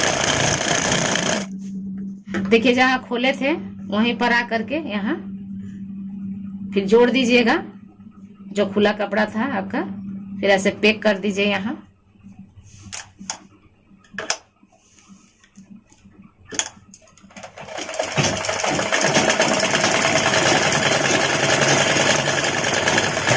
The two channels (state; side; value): identical; both; correlation 1.00